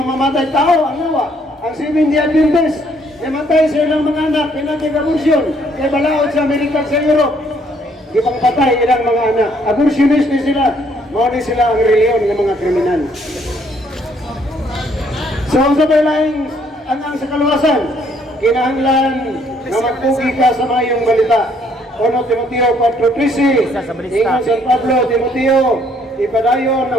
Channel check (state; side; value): normal; both; correlation 0.67